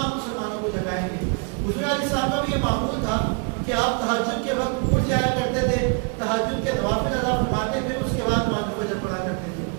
مسلمانوں کو جگائیں گے. حضور علیہ السلام کا بھی یہ معمول تھا کہ آپ تہجد کے وقت اٹھ جایا کرتے تھے, تہجد کے نوافل ادا فرماتے تھے, اس کے بعد نماز فجر پڑھا کرتے تھے,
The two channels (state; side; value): quieter; left; 33.6 dB